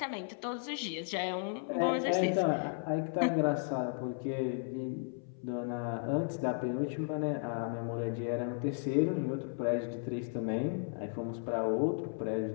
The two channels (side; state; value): right; silent; 55 dB below the other